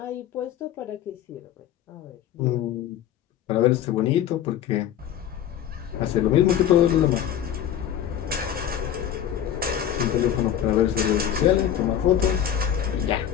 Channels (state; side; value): quieter; right; 10.2 dB